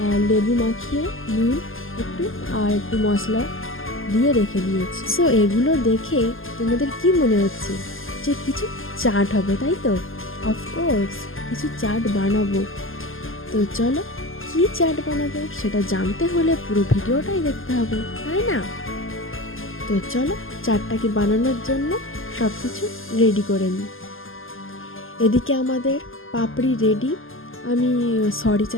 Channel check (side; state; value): right; late; 0.59 ms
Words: লেবু মাখিয়ে নুন একটু মশলা দিয়ে রেখে দিয়েছি। সো এগুলো দেখে তোমাদের কি মনে হচ্ছে যে কিছু চাট হবে, তাই তো? অফকোর্স কিছু চাট বানাবো। তো চলো, কি চাট বানাবো সেটা জানতে হলে পুরো ভিডিওটাই দেখতে হবে, তাই না? তো চলো চাটটাকে বানানোর জন্য সব কিছু রেডি করে নিই। এদিকে আমাদের পাপড়ি রেডি। আমি সরি